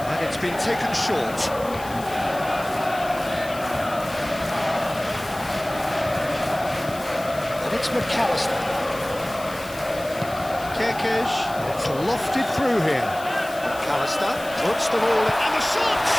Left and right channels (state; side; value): noise; left; hiss, 17 dB below the sound